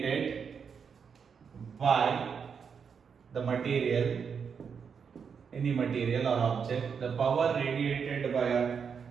by the material, any material or object. The power radiated by a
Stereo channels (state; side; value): quieter; left; 6.5 dB